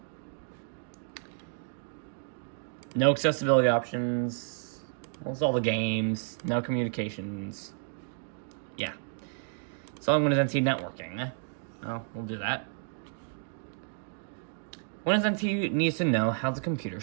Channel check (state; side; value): silent; left; digital silence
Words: No accessibility options, almost all the games, no communications. Yeah. So I'm Windows NT networking. Oh, we'll do that. Windows NT needs to know how the computer